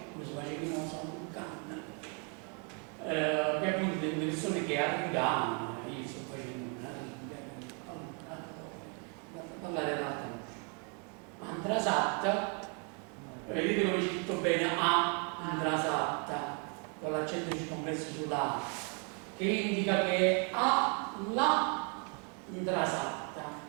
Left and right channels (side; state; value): left; quieter; 36.2 dB